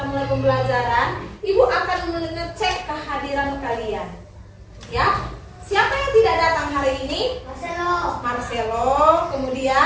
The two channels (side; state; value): both; identical; correlation 1.00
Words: mulai pembelajaran, ibu akan mengecek kehadiran kalian. Ya. Siapa yang tidak datang hari ini? Marcelo.